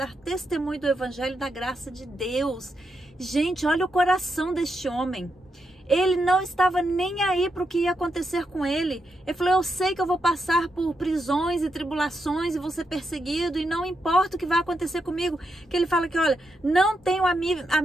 testemunho do Evangelho da graça de Deus. Gente, olha o coração deste homem. Ele não estava nem aí para o que ia acontecer com ele. Ele falou: eu sei que eu vou passar por prisões e tribulações e vou ser perseguido e não importa o que vai acontecer comigo. Que ele fala que, olha, não tenho a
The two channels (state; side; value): normal; both; correlation 0.83